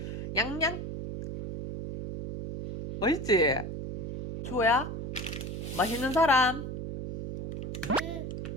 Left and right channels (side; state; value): right; noise; hum, 6 dB below the sound